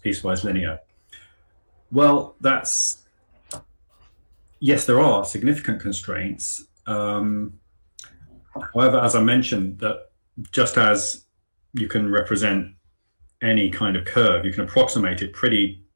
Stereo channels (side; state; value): both; inverted; correlation -1.00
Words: piecewise linear? Well, yes, there are significant constraints. However, as I mentioned, that just as you can represent any kind of curve, you can approximate it pretty